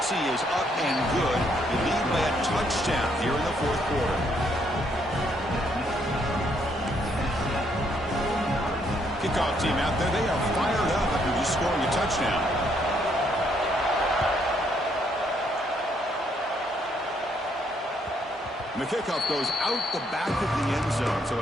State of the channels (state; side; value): normal; both; correlation 0.71